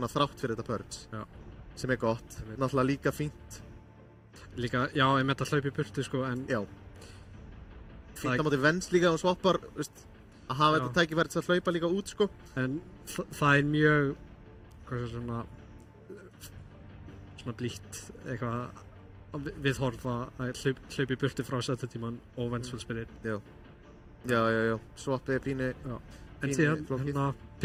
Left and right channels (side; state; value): both; identical; correlation 1.00